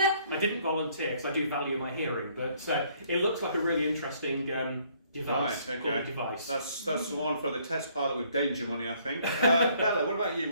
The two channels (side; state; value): both; inverted; correlation -0.64